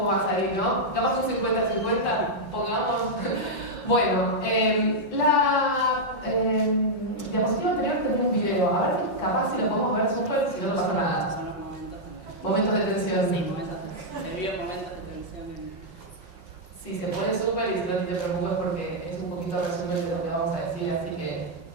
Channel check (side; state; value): right; late; 5.5 ms